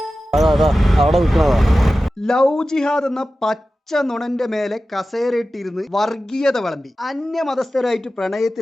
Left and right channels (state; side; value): normal; both; correlation 0.94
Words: ലവ് ജിഹാദ് എന്ന പച്ച നുണന്റെ മേലെ കസേരയിട്ടിരുന്ന് വർഗീയത വിളമ്പി അന്യമതസ്ഥരായിട്ട്